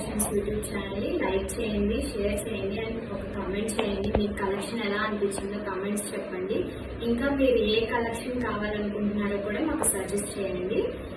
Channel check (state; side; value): identical; both; correlation 1.00